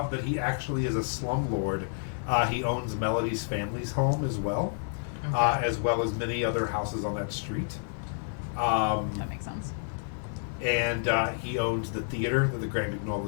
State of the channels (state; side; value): silent; right; digital silence